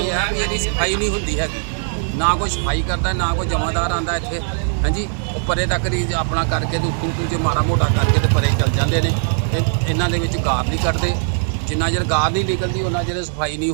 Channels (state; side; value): silent; left; 66 dB below the other